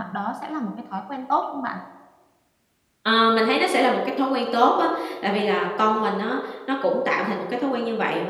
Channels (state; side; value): identical; both; correlation 1.00